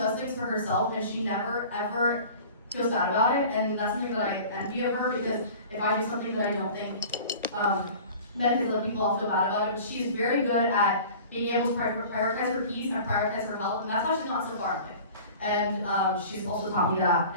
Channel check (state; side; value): inverted; both; correlation -0.42